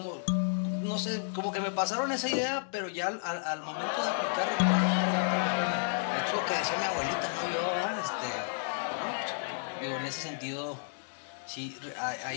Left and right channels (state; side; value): silent; right; digital silence